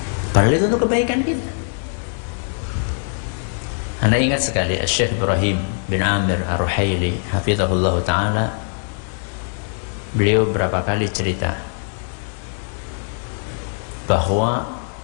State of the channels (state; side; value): silent; right; digital silence